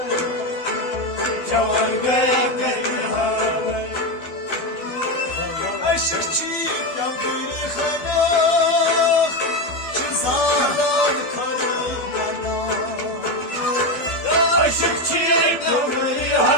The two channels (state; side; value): late; right; 12 ms